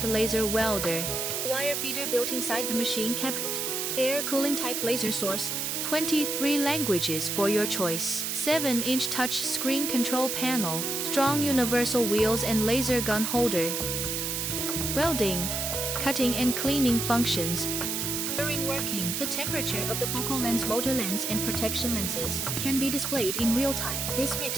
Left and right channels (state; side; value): noise; right; hiss, 1 dB below the sound